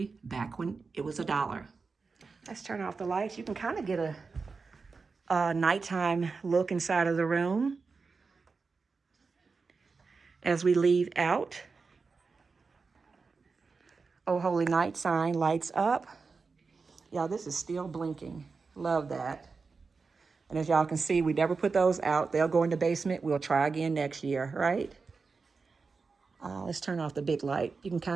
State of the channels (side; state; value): left; quieter; 4.6 dB